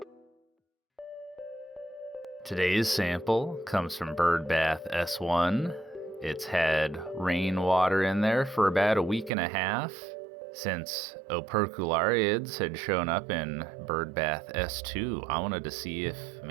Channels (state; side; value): drops out; left; at 9.3 s